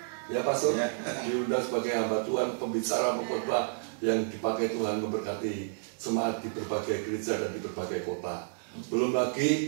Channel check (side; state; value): left; silent; digital silence